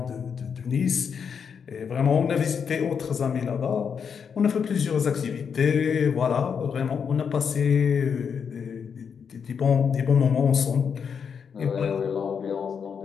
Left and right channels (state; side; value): quieter; right; 6.7 dB